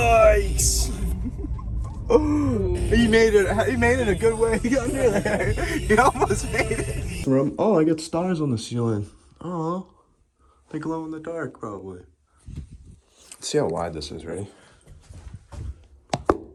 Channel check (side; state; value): both; identical; correlation 1.00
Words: He made it. He made it a good way under there. He almost made it. Oh, I got stars on the ceiling. Oh, they glow in the dark, probably. Let's see how wide this is. Ready?